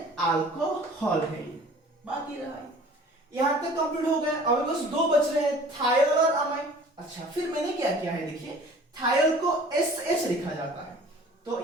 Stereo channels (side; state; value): both; normal; correlation 0.48